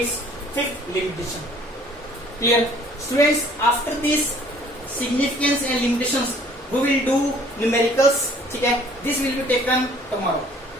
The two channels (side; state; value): both; normal; correlation 0.56